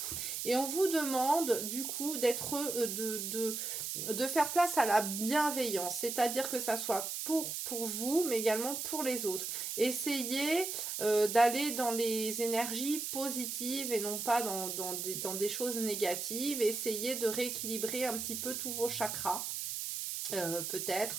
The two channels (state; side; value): noise; right; hiss, 4 dB below the sound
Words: Et on vous demande du coup d'être, de faire place à la bienveillance, c'est-à-dire que ça soit pour vous, mais également pour les autres. Essayez d'aller dans les énergies positives et non pas dans des choses négatives. Essayez de rééquilibrer un petit peu tous vos chakras.